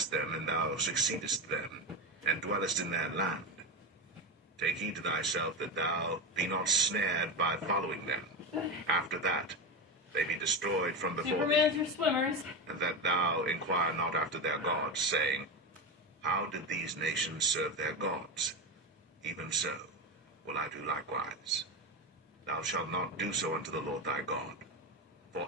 them, and thou succeedest them, and dwellest in their land, take heed to thyself that thou be not snared by following them. After that, they be destroyed from before Supermans thee, are swimmers. and that thou inquire not after their gods, saying, how did these nations serve their gods? Even so will I do likewise. Thou shalt not do so unto the Lord thy God. For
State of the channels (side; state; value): both; normal; correlation 0.16